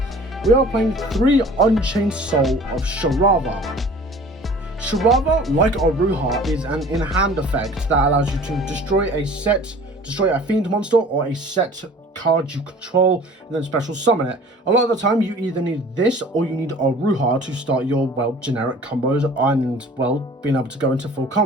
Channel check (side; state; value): both; normal; correlation 0.47